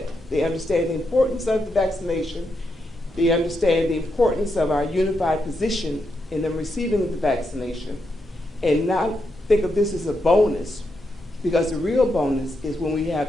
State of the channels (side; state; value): both; normal; correlation 0.83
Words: they understand the importance of the vaccination, they understand the importance of our unified position in them receiving the vaccination, and not think of this as a bonus, because the real bonus is when we